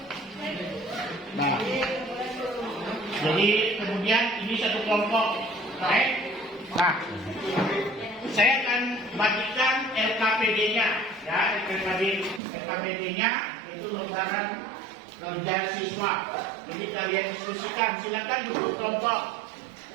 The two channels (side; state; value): left; drops out; at 12.4 s